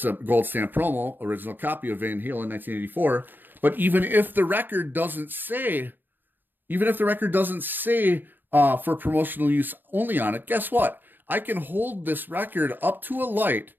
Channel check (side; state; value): left; late; 0.092 ms